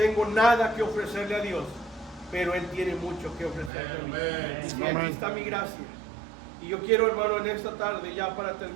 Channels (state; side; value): drops out; left; at 3.7 s